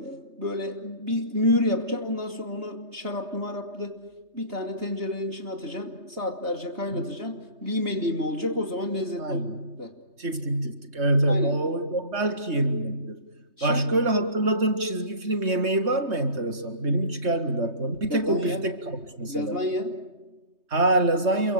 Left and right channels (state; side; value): late; left; 3.2 ms